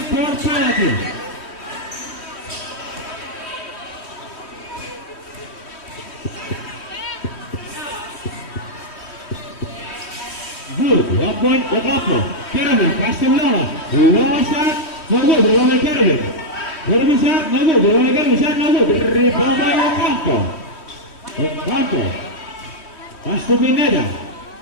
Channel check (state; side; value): late; right; 3.1 ms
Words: penalty. Good. 1 point Ocampo. Carabin. Pass to Longo. Longo shot. No good. Rebound by Carabin. Carabin shot. No good. Rebound by Carabin. Shot. No good. Rebound by Ocampo. Ocampo. Pass to Pineda.